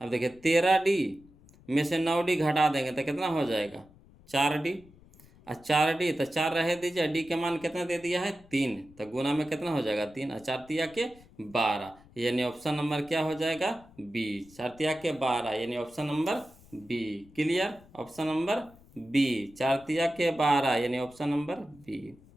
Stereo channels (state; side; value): noise; left; rumble, 25 dB below the sound